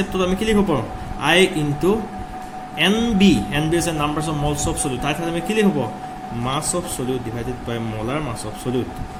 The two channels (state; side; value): identical; both; correlation 1.00